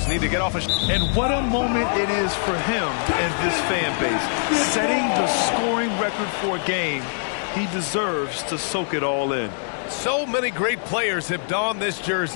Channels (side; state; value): right; silent; digital silence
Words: need to get off a... And what a moment it is for him and this fan base. Setting the scoring record for a game, he deserves to soak it all in. So many great players have donned this